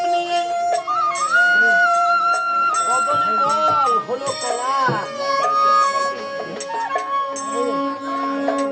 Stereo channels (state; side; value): identical; both; correlation 1.00